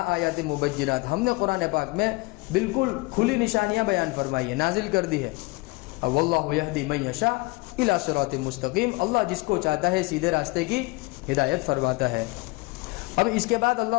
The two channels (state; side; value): quieter; right; 24.8 dB